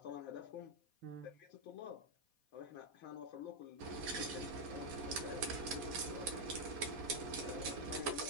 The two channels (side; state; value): left; late; 4.1 ms